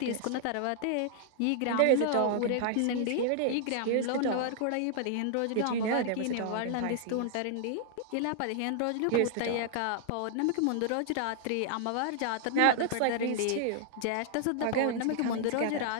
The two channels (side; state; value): both; different; correlation -0.01